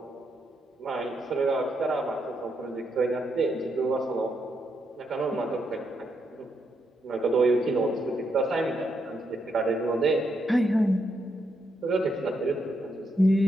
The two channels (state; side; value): normal; both; correlation 0.80